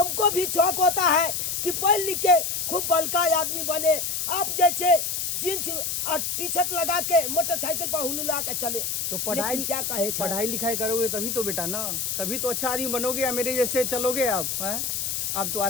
भी शौक होता है कि पढ़ लिख के खूब बड़का आदमी बने, आप जैसे जींस और टी शर्ट लगा के मोटरसाइकिल पर हुलुला के चले। तो पढ़ाई क्या कहे चल? पढ़ाई लिखाई करोगे तभी तो बेटा ना, तभी तो अच्छा आदमी बनोगे या मेरे जैसे चलोगे आप हैं? आप तो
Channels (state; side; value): noise; left; hiss, 1 dB below the sound